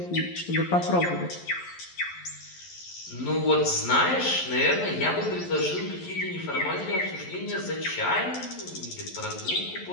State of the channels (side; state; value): right; late; 11 ms